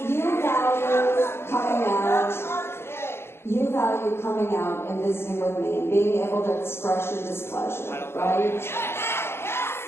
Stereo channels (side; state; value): right; late; 0.12 ms